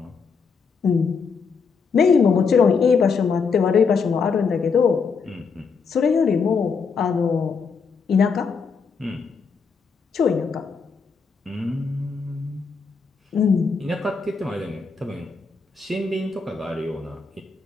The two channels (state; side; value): quieter; right; 5.3 dB